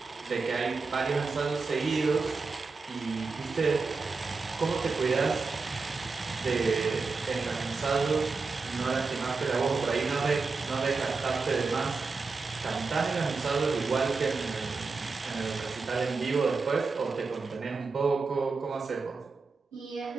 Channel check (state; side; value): quieter; left; 4.3 dB